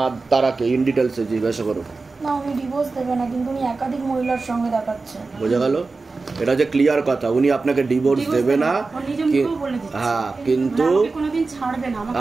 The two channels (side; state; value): left; quieter; 3.9 dB